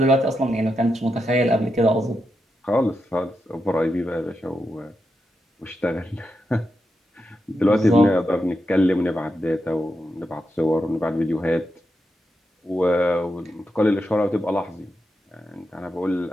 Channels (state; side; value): normal; both; correlation 0.86